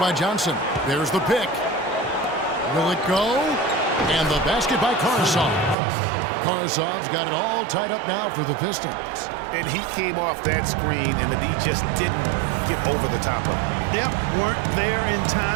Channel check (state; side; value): drops out; left; at 5.8 s